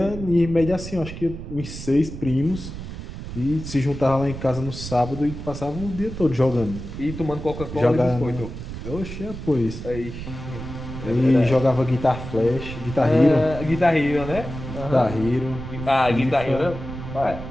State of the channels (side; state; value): right; noise; rumble, 9 dB below the sound